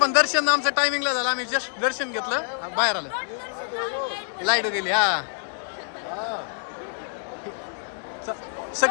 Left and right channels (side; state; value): right; silent; digital silence